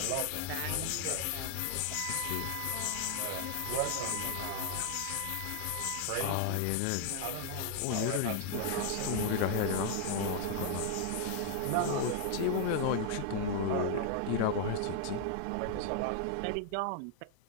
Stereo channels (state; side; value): different; both; correlation 0.00